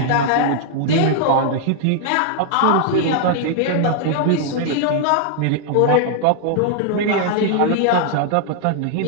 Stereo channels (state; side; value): different; both; correlation 0.00